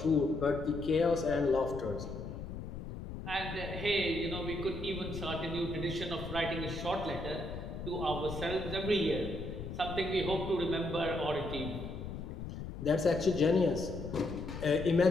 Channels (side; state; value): left; noise; rumble, 8 dB below the sound